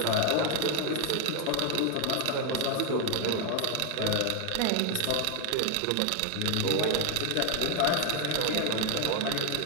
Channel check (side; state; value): both; different; correlation 0.01